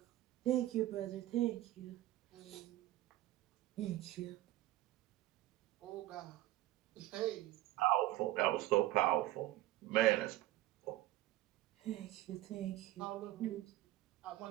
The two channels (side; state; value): left; quieter; 16.0 dB